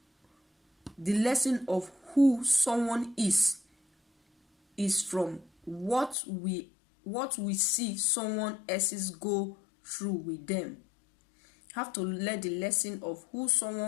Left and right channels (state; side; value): drops out; right; at 6.2 s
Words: is from what we see someone else's go through with them. Have to learn the lesson of who